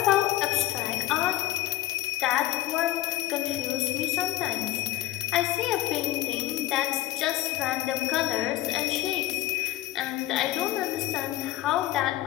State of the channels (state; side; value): quieter; right; 15.5 dB